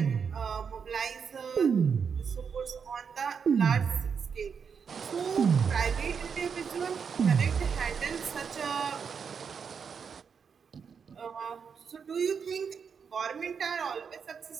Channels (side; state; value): left; quieter; 6.4 dB